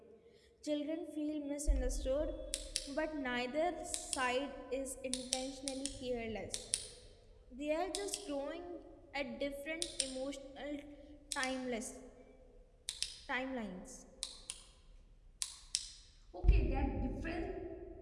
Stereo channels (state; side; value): identical; both; correlation 1.00